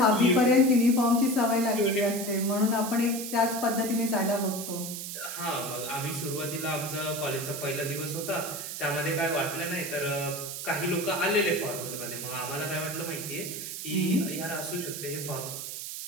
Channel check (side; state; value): right; noise; hiss, 7 dB below the sound